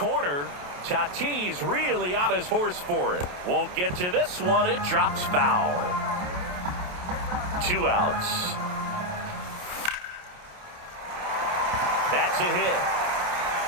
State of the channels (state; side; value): late; left; 28 ms